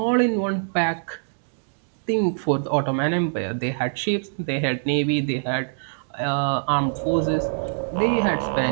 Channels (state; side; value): silent; left; digital silence